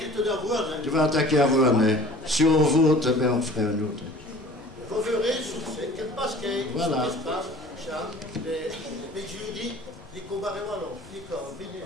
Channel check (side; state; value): left; noise; rumble, 22 dB below the sound